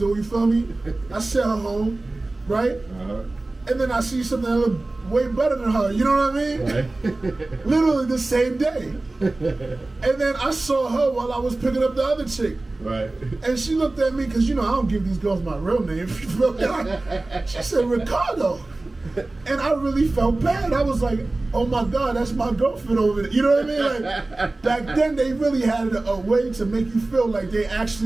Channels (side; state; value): left; quieter; 3.0 dB